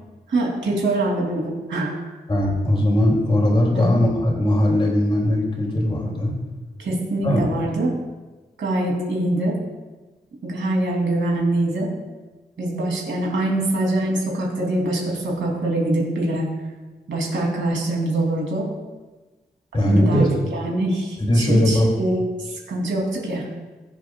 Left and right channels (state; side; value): normal; both; correlation 0.80